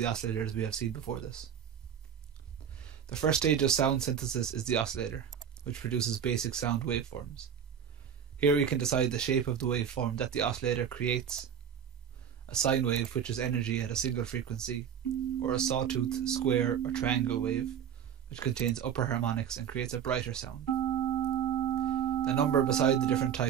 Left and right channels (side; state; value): left; quieter; 8.2 dB